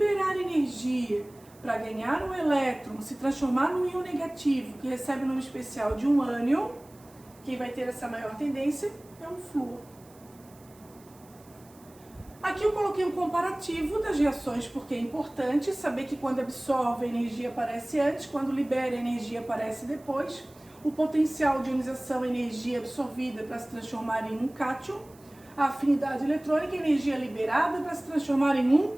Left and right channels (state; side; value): noise; right; hiss, 27 dB below the sound